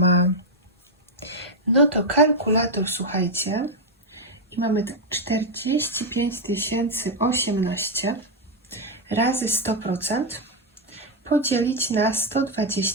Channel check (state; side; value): normal; both; correlation 0.01